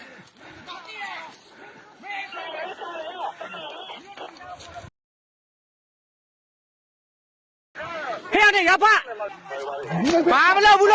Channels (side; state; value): both; identical; correlation 1.00